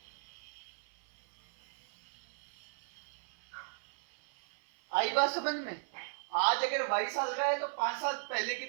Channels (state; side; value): silent; left; 53 dB below the other